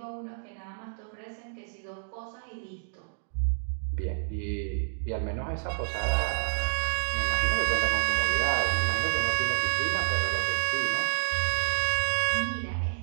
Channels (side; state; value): left; silent; digital silence